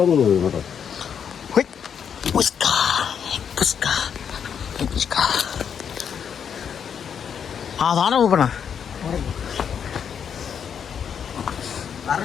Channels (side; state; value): right; quieter; 7.6 dB